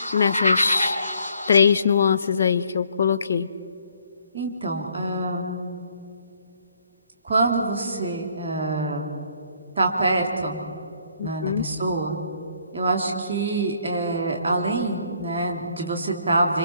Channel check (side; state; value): both; inverted; correlation -0.65